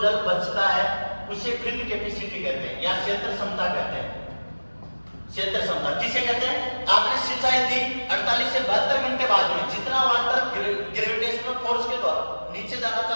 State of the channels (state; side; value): inverted; both; correlation -1.00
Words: जल बचता है उसे फील्ड कैपेसिटी कहते हैं या क्षेत्र क्षमता कहते हैं। क्षेत्र क्षमता किसे कहते हैं? आपने सिंचाई दी 48 से 72 घंटे बाद में, जितना वाटर ग्रेविटेशनल फोर्स के द्वारा नीचे जाना